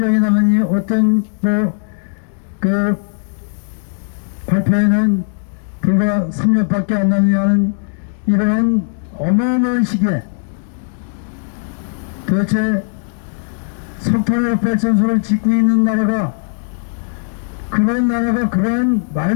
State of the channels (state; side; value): silent; right; digital silence